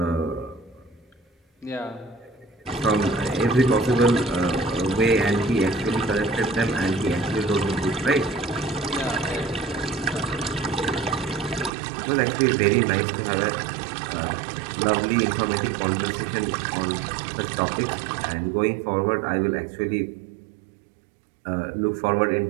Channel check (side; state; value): left; drops out; at 11.7 s